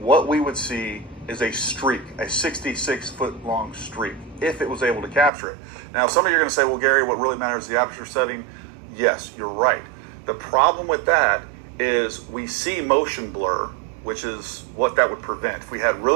we would see is a streak, a 66-foot long streak, if it was able to capture it. Now, some of you are going to say, well, Gary, what really matters is the aperture setting. Yes, you're right. The problem with that is we see motion blur, which is what that would prevent. If we had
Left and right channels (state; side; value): drops out; left; at 5.3 s